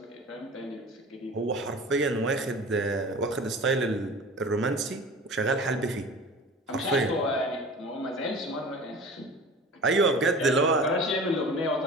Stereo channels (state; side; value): normal; both; correlation 0.39